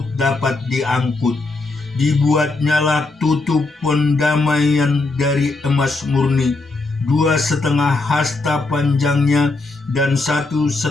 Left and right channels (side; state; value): right; quieter; 3.3 dB